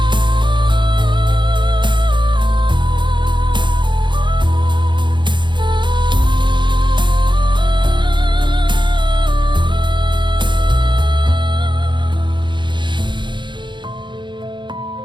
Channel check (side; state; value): left; late; 0.23 ms